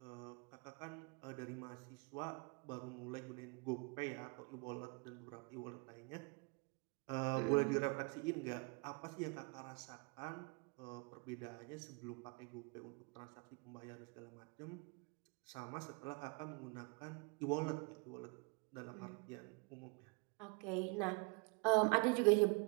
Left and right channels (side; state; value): left; quieter; 31.5 dB